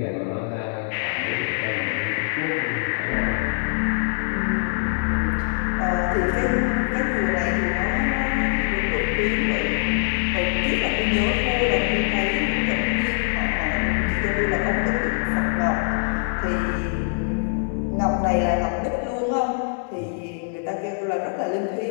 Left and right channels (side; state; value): right; silent; 63 dB below the other